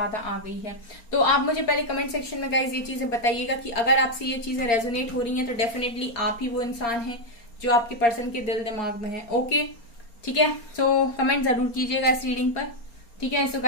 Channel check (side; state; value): right; late; 4.3 ms